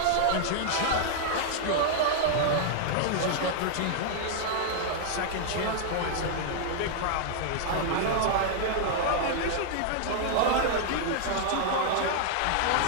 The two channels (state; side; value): different; both; correlation -0.01